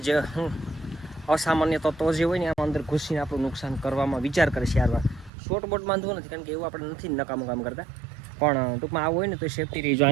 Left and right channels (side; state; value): left; drops out; at 5.3 s